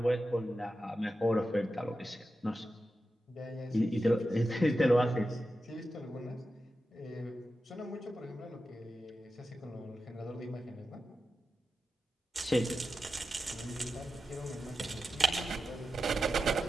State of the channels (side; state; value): both; normal; correlation 0.91